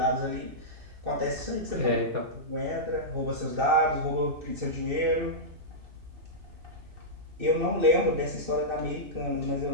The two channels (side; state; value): left; late; 2.6 ms